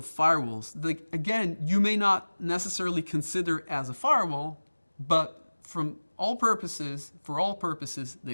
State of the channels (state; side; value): inverted; both; correlation -1.00